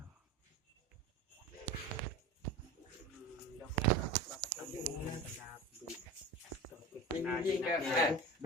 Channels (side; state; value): both; normal; correlation 0.30